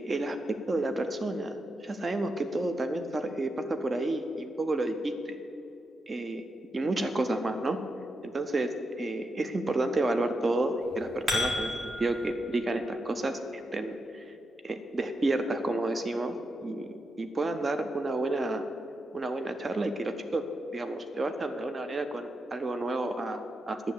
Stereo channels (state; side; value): normal; both; correlation 0.85